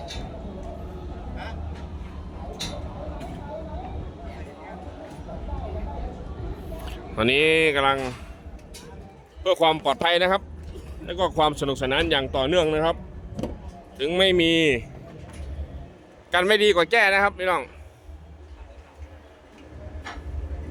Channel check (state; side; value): identical; both; correlation 1.00